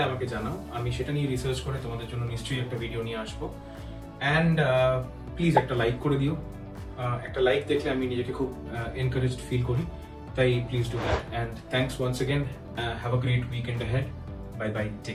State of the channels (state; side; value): identical; both; correlation 1.00